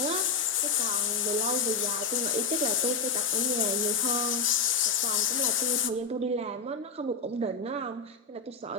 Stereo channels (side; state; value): right; quieter; 4.7 dB